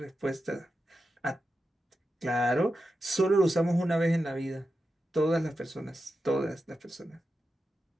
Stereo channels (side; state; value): both; normal; correlation 0.90